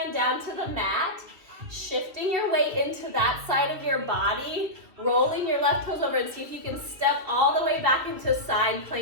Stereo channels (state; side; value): late; left; 2.9 ms